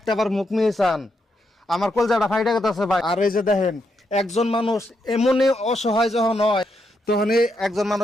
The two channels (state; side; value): normal; both; correlation 0.81